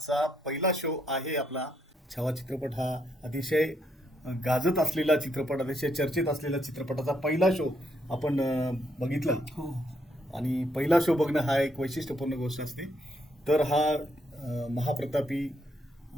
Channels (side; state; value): both; normal; correlation 0.76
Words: पहिला शो आहे आपला. छावा चित्रपट हा अतिशय गाजत असलेला चित्रपट, अतिशय चर्चेत असलेला चित्रपटाचा पहिला शो आपण बघितला. आणि पहिला शो बघणं हा एक वैशिष्ट्यपूर्ण गोष्ट असते. तर हा महाप्रतापी